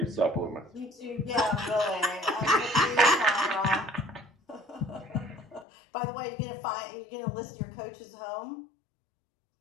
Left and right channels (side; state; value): right; drops out; at 5.7 s